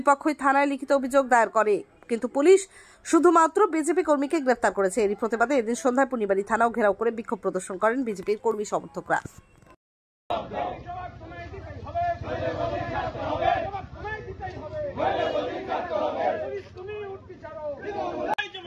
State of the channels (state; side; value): identical; both; correlation 1.00